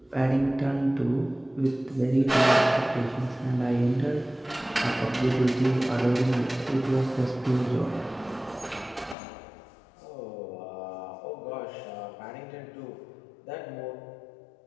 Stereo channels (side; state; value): right; drops out; at 9.2 s